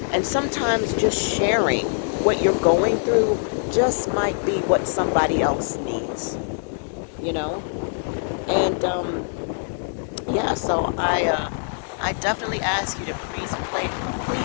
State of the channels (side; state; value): right; silent; digital silence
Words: And sometimes just sharing what you're going through just might be what somebody else needs. You know? And, yeah, so I definitely ask you to please pray